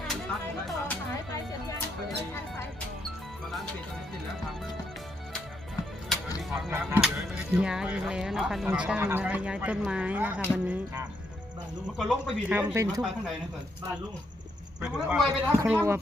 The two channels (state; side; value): normal; both; correlation 0.78